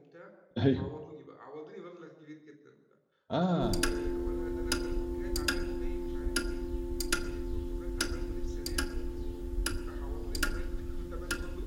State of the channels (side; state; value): both; identical; correlation 1.00